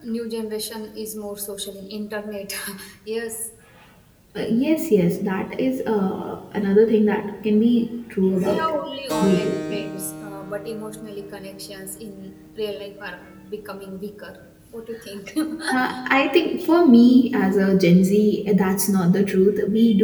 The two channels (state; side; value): identical; both; correlation 1.00